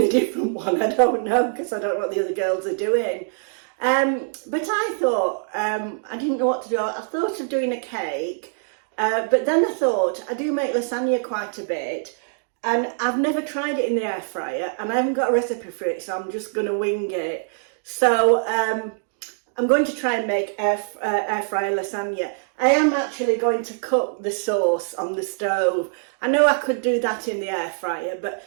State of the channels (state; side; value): silent; left; digital silence